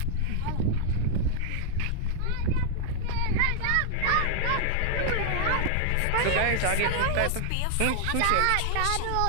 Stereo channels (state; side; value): different; both; correlation 0.00